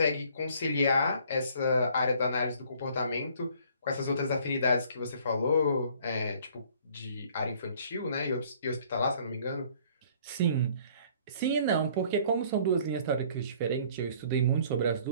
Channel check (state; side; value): inverted; both; correlation -0.57